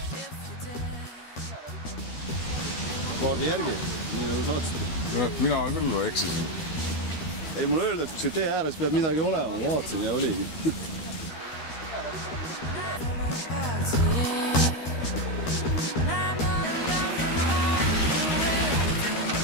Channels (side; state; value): right; late; 13 ms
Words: Kaardi järgi, nii nagu saatsite. Mina küll eksisin. Ei, mulle öeldi, et kui see tee ääres peab midagi olema, ma vaatasin ja oligi.